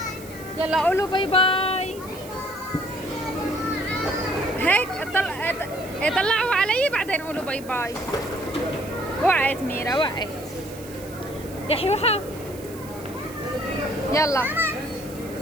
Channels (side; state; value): right; noise; hiss, 18 dB below the sound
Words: يلا قولوا باي باي. هيك طلعوا علي بعدين قولوا باي باي. وقعت ميرا وقعت. يا حيوحة يلا.